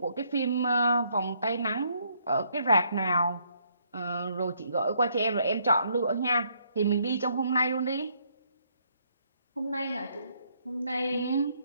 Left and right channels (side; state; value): both; inverted; correlation -0.70